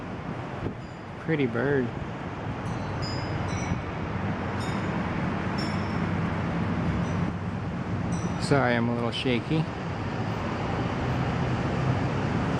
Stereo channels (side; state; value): both; identical; correlation 1.00